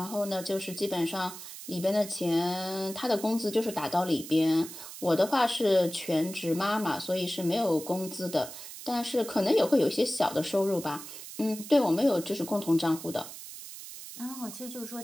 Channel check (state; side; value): noise; right; hiss, 12 dB below the sound